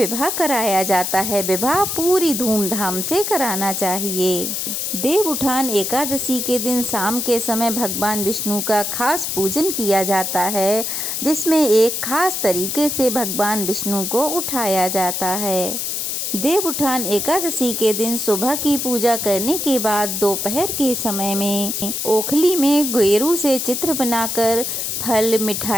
कराया जाता है। विवाह पूरी धूमधाम से कराना चाहिए। देव उठान एकादशी के दिन शाम के समय भगवान विष्णु का खास पूजन किया जाता है, जिसमें एक खास तरीके से भगवान विष्णु को उठाया जाता है। देव उठान एकादशी के दिन सुबह की पूजा करने के बाद दोपहर के समय में ओखली में गेरू से चित्र बनाकर फल,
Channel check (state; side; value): noise; left; hiss, 2 dB below the sound